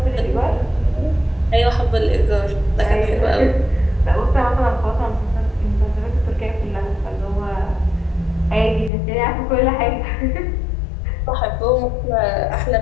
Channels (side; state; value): right; drops out; at 8.9 s